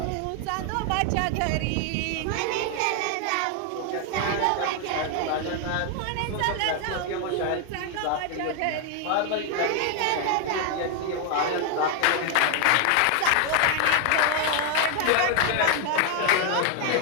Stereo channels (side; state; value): both; different; correlation 0.00